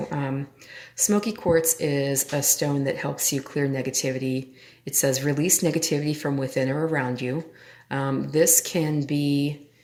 smoky quartz is a stone that helps you clear negativity. It says release negativity from within or around you. This can be,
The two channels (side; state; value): both; identical; correlation 1.00